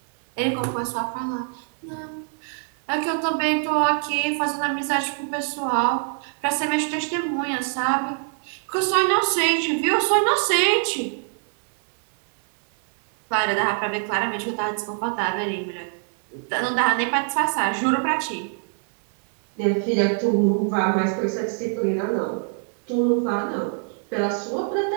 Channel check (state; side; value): silent; left; 62 dB below the other